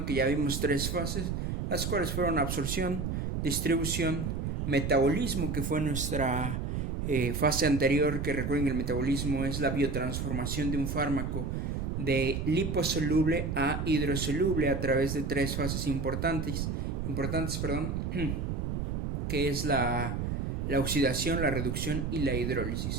que ya vimos 3 fases, las cuales fueron absorción, distribución, metabolismo, que fue nuestra fase anterior, que recuerden que el metabolismo es la biotransformación de un fármaco de liposoluble a hidrosoluble a través de 3 fases importantes, que es la oxidación, la reducción y la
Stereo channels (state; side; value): noise; right; rumble, 2 dB below the sound